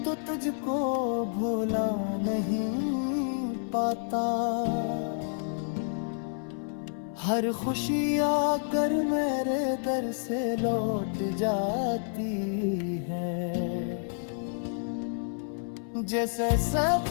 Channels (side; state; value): right; silent; 58 dB below the other